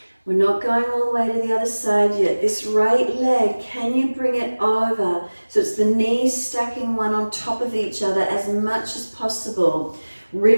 We're not going all the way to the other side yet. This right leg, can you bring it over? So it's the knees stacking one on top of each other as much as possible.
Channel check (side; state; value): both; inverted; correlation -1.00